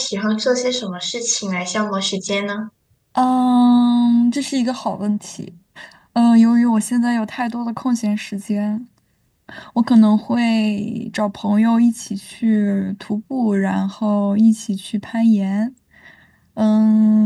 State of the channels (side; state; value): both; identical; correlation 1.00